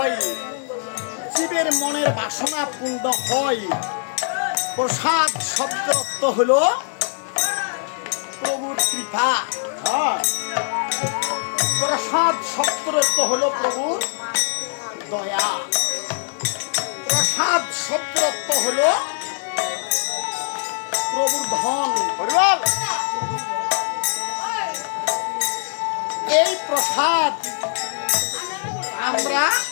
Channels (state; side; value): silent; right; 64 dB below the other